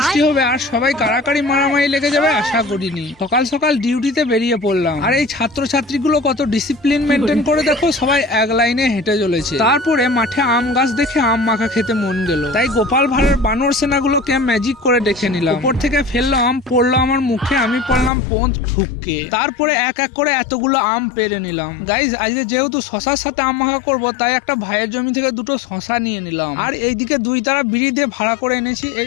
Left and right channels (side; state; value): right; drops out; at 18.1 s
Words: হবে আর সবাই কাড়াকাড়ি মারামারি লেগে যাবে আশা করিনি। সকাল সকাল ডিউটিতে বেরিয়ে পড়লাম, আর এই ছাত্রছাত্রীগুলো কত ডিসিপ্লিন মেনটেন করে দেখো, সবাই এক লাইনে হেঁটে চলেছে। তারপরে মাঠে আম গাছ দেখে আম মাখা খেতে মন গেল, তাই গোপাল ভাঁড়ের বানর সেনাগুলোকে ম্যাজিক করে ডেকে নিলাম। উপর থেকে ফেললো আম, পড়লো আমার মুখে, আমি পড়লাম পোঁত ঠুককে। তারপরে এক এক করে এতগুলো আম পেরে নিলাম। গাইজ আজকে যেহেতু শশার সাথে আম মাখা করবো, তাই একটা ভাইয়ের জমি থেকে দুটো শশা নিয়ে নিলাম, আর এইদিকে দুই তারা বিড়ি দিয়ে ভাড়া করে এনেছি এই